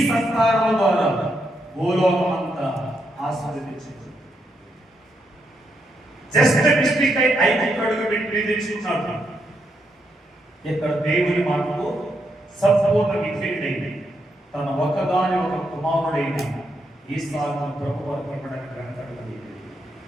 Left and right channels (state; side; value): normal; both; correlation 0.80